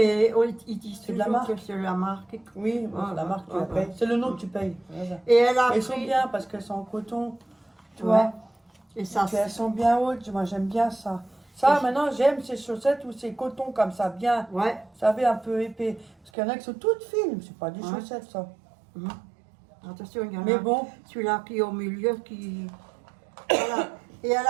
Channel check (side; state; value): left; drops out; at 16.3 s